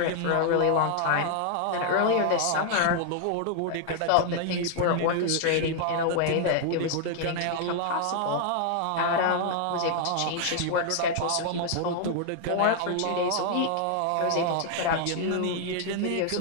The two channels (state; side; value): different; both; correlation 0.00